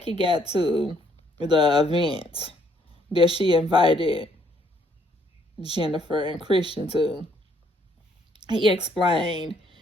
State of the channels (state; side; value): normal; both; correlation 0.68